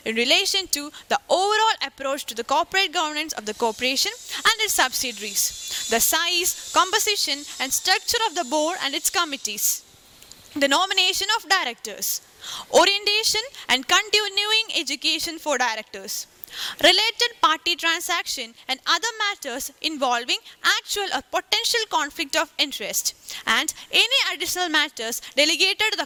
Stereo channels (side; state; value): both; identical; correlation 1.00